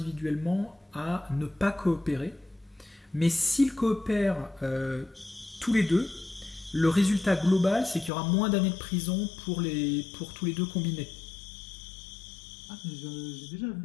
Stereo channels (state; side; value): drops out; right; at 8.1 s